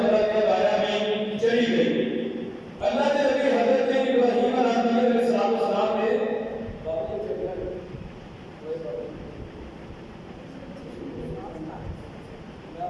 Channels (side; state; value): both; identical; correlation 1.00